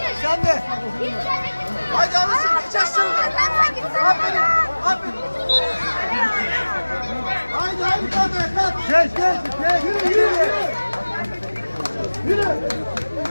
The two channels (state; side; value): inverted; both; correlation -1.00